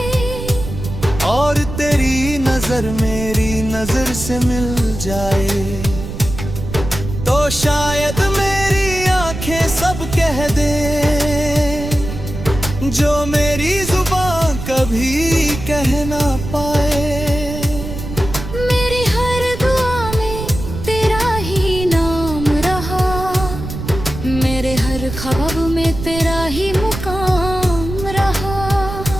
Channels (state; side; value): noise; right; rumble, 8 dB below the sound